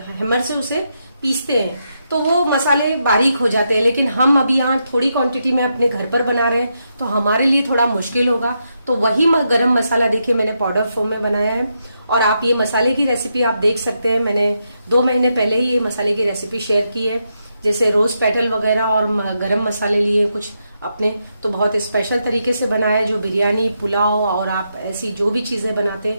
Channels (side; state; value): both; inverted; correlation -0.82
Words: हैमर से उसे पीसते हैं तो वो मसाले बारीक हो जाते हैं। लेकिन हम अभी यहाँ थोड़ी क्वांटिटी में अपने घर पर बना रहे हैं तो हमारे लिए थोड़ा मुश्किल होगा। तो वही गरम मसाला देखिए मैंने पाउडर फॉर्म में बनाया है। और आप ये मसाले की रेसिपी आप देख सकते हैं, मैंने 2 महीने पहले ही ये मसाले की रेसिपी शेयर की है। जैसे रोज पेटल वगैरह और गरम मसाले लिए कुछ अपने, तो बहुत स्पेशल तरीके से बनाया, जो बिरयानी, पुलाव और आप ऐसी जो भी चीजें बनाते